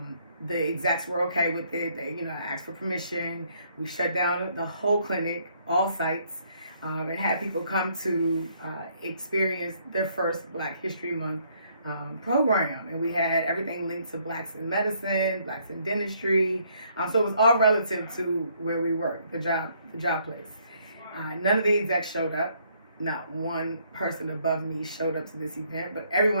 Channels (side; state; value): both; inverted; correlation -0.68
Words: The execs were okay with it. They, you know, asked for permission. We shut down the whole clinic, all sites, and had people come to experience their first Black History Month program. And we had everything linked to Blacks in medicine, Blacks in dentistry. So it was all relative to where we worked, the job place. None of the execs showed up. Not one person above me showed up to this event, but